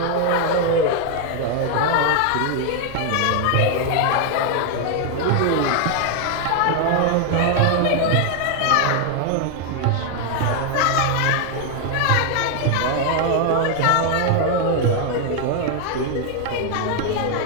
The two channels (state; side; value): different; both; correlation 0.01